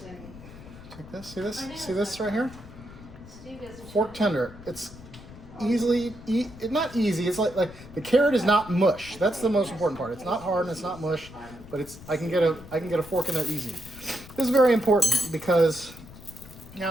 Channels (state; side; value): noise; left; rumble, 17 dB below the sound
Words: Take this, see this right here? Fork tender. It's easily, not easy, it's like the carrot is not mush. That's the most important part. It's not hard and it's not mush, but it's I can get a fork in there easy. This is very important because